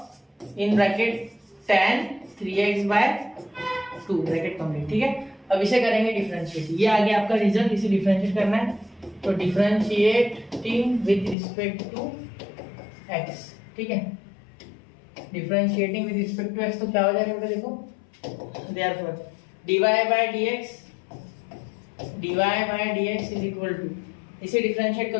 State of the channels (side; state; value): right; drops out; at 11.4 s